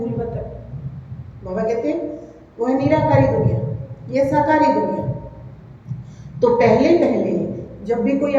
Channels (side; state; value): both; identical; correlation 1.00